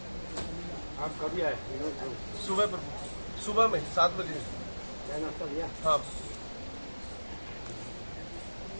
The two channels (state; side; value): inverted; both; correlation -1.00